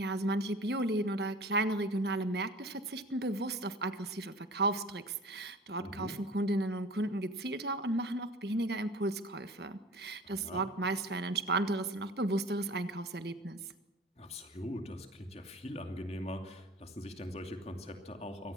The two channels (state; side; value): normal; both; correlation 0.42